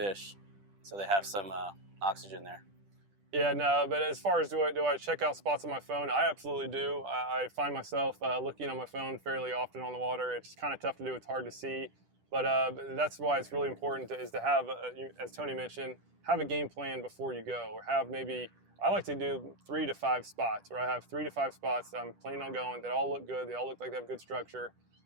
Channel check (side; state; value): left; late; 10 ms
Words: so they have some oxygen there. Yeah, no, but as far as do I check out spots on my phone, I absolutely do. I find myself looking on my phone fairly often on the water. It's kind of tough to do. It's hard to see. But that's why it's really important is to have, as Tony mentioned, have a game plan before you go, or have maybe, I like to do 3 to 5 spots, where I have 3 to 5 spots that I'm planning on going that all look good, they all look like they have good structure,